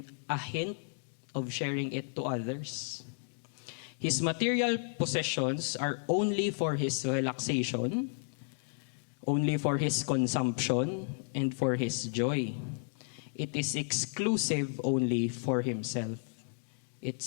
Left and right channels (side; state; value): right; silent; digital silence